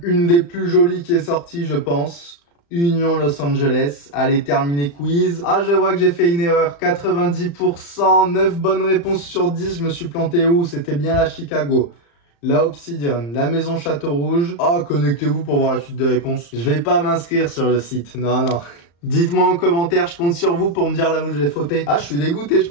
Une des plus jolies qui est sortie, je pense. Union Los Angeles. Allez, terminer quiz. Ah, je vois que j'ai fait une erreur. 90%, 9 bonnes réponses sur 10. Je me suis planté où? C'était bien la Chicago. La Obsidian, la Maison Château Rouge. Ah, connectez-vous pour voir la suite de réponses. Je vais pas m'inscrire sur le site. Non, non. Dites-moi en commentaire, je compte sur vous pour me dire là où je vais fauter. Ah, je suis dégoûté, je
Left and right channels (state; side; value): late; right; 35 ms